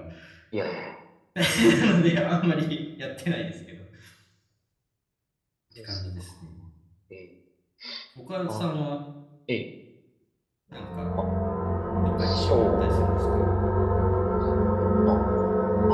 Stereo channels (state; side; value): identical; both; correlation 1.00